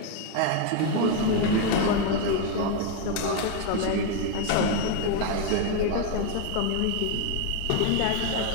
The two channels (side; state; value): both; different; correlation 0.01